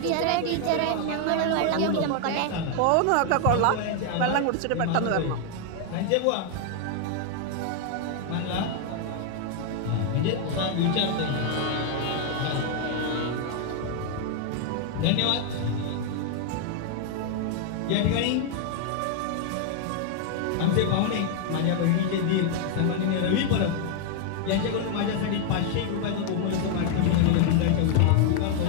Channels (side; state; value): both; different; correlation 0.00